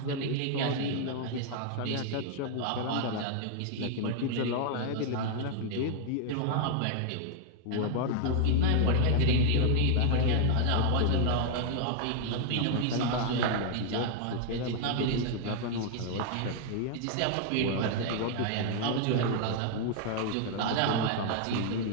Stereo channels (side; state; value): both; different; correlation 0.00